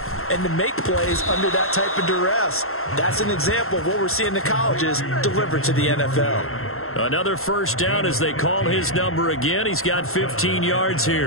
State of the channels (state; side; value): late; right; 0.62 ms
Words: and to make plays under that type of duress. That's an example of what we're seeing in the colleges delivered to the NFL. Another first down as they call his number again. He's got 15 yards